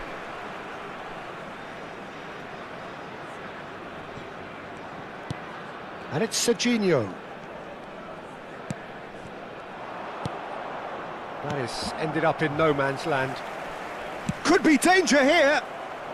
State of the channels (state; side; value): identical; both; correlation 1.00